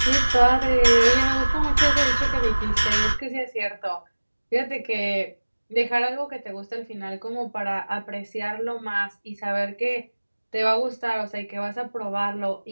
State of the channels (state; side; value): inverted; both; correlation -1.00